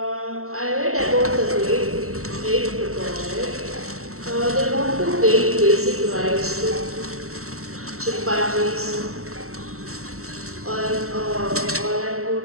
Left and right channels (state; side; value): late; left; 0.63 ms